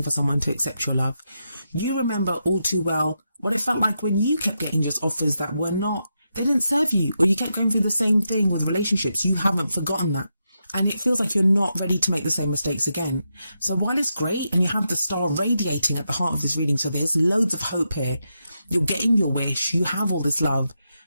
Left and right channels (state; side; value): inverted; both; correlation -0.85